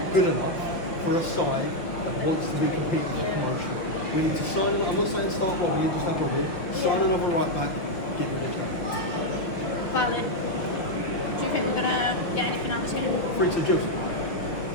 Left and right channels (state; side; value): late; right; 5.6 ms